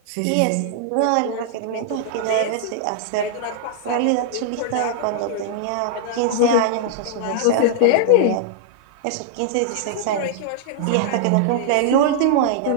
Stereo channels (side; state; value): both; different; correlation -0.01